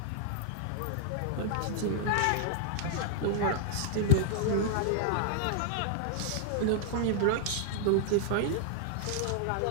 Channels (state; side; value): different; both; correlation -0.01